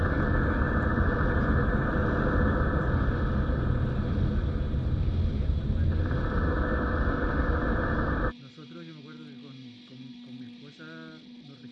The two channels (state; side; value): identical; both; correlation 1.00